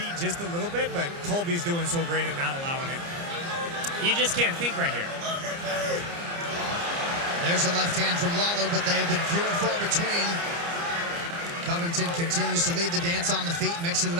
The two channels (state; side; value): late; left; 29 ms